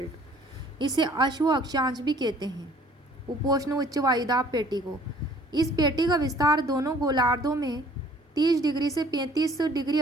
इसे अश्व अक्षांश भी कहते हैं, उपोष्ण उच्च वायुदाब पेटी को। इस पेटी का विस्तार दोनों गोलार्धों में 30 डिग्री से 35 डिग्री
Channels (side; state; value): both; normal; correlation 0.55